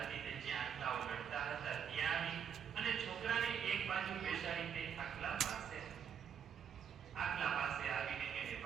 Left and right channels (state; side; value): quieter; left; 7.9 dB